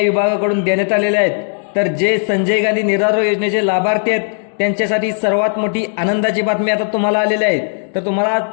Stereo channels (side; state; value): right; silent; 66 dB below the other